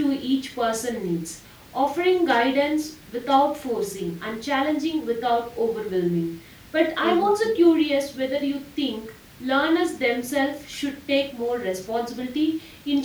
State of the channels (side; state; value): both; identical; correlation 1.00